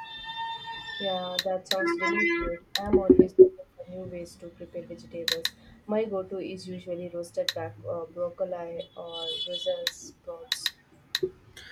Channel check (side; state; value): both; identical; correlation 1.00